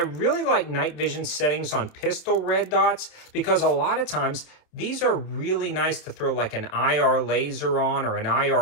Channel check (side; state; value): right; late; 27 ms